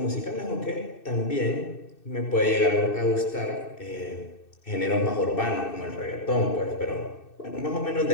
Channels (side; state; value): right; late; 2.6 ms